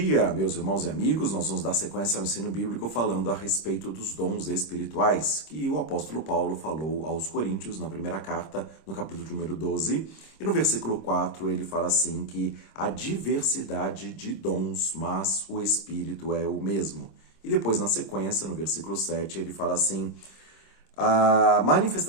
meus irmãos e amigos. Nós vamos dar sequência ao ensino bíblico falando a respeito dos dons espirituais, que o apóstolo Paulo falou aos Coríntios na primeira carta, no capítulo número 12. E no versículo 4 ele fala assim que há diversidade de dons, mas o Espírito é o mesmo. E depois, na sequência, no versículo 7, ele fala assim: a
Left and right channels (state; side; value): late; right; 26 ms